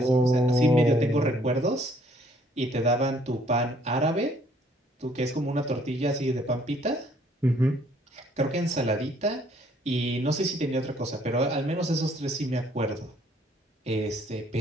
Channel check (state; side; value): normal; both; correlation 0.63